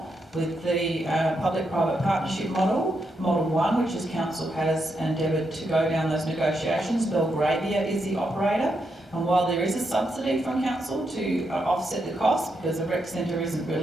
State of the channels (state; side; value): normal; both; correlation 0.82